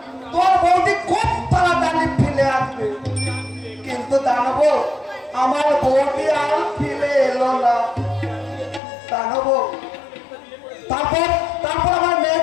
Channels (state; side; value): drops out; right; at 8.8 s